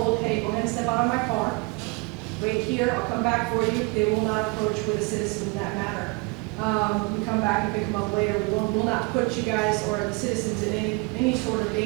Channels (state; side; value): quieter; left; 27.6 dB